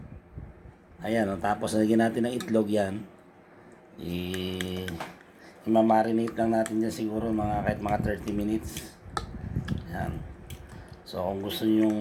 Ayan, tapos lagyan natin ng itlog yan. I-marinate lang natin dyan siguro kahit mga 30 minutes. Ayan. So kung gusto niyo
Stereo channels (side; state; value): both; identical; correlation 1.00